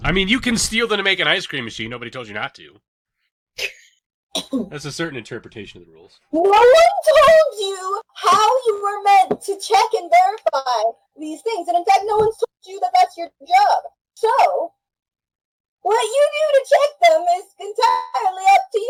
I mean, you can steal them to make an ice cream machine. Nobody told you not to. That's a certain interpretation of the rules. No one told you how you were meant to check and verify these things. And in fact, no one's told you that that's your job. So, what you do to check them is entirely up to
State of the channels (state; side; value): identical; both; correlation 1.00